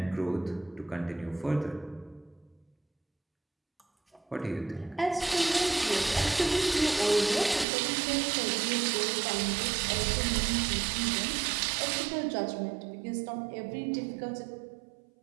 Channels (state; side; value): drops out; left; at 7.7 s